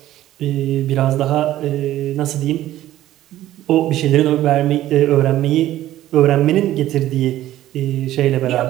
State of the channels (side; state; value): left; quieter; 13.9 dB